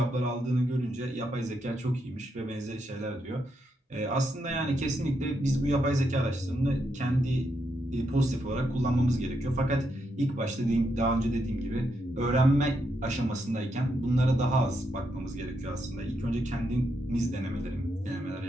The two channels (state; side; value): normal; both; correlation 0.80